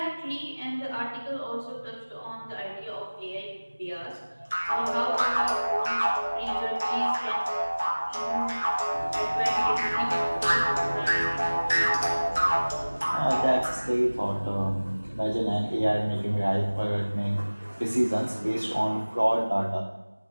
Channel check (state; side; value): inverted; both; correlation -1.00